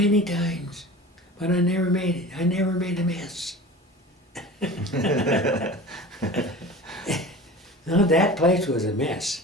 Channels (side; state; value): both; normal; correlation 0.37